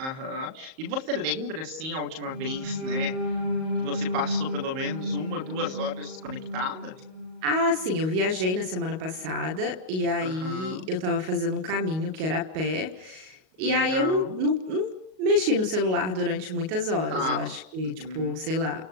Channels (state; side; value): late; left; 38 ms